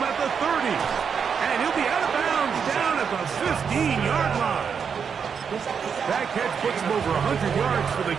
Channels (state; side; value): quieter; left; 6.6 dB